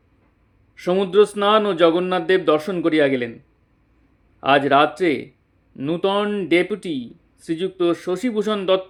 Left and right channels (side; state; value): both; identical; correlation 1.00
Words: সমুদ্র স্নান ও জগন্নাথদেব দর্শন করিয়া গেলেন। আজ রাত্রে নূতন ডেপুটি শ্রীযুক্ত শশীভূষণ